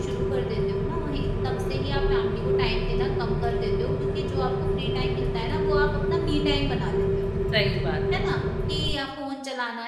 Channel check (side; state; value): both; identical; correlation 1.00